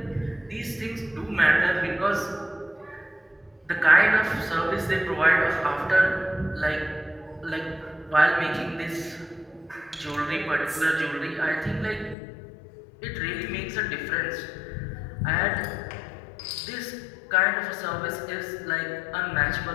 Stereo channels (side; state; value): right; drops out; at 12.2 s